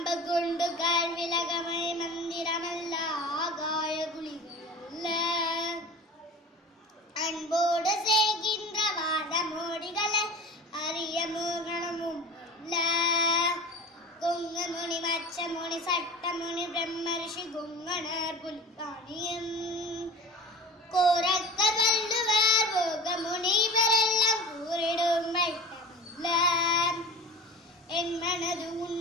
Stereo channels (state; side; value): normal; both; correlation 0.36